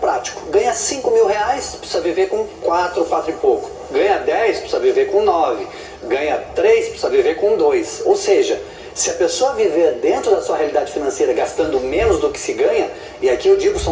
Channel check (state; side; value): identical; both; correlation 1.00